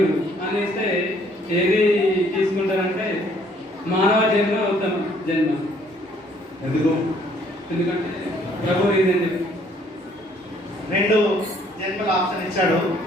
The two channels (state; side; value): normal; both; correlation 0.62